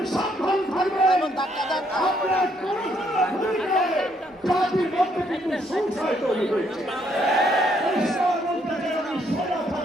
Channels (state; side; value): normal; both; correlation 0.71